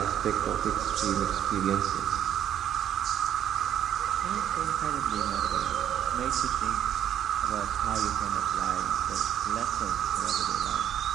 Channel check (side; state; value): left; quieter; 10.2 dB